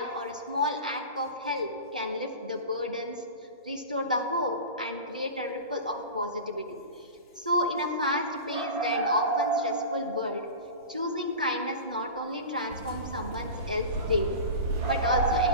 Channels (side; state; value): both; inverted; correlation -0.30